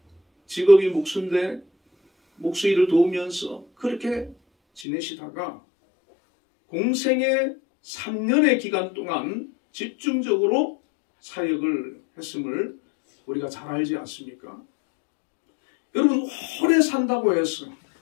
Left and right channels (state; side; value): drops out; right; at 4.9 s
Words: 직업이 목수인데 목수일을 도우면서 그렇게 지내시다가 공생의 3년의 기간 동안 집중적으로 사역을 했음을 우리가 잘 알지 않습니까? 여러분 오래 산다고 해서